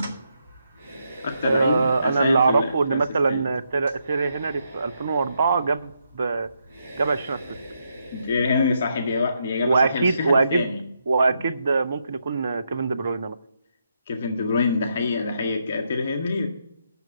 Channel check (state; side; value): inverted; both; correlation -0.79